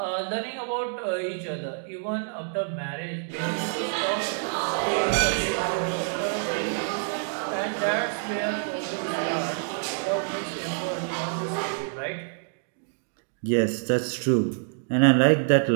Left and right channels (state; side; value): silent; left; 59 dB below the other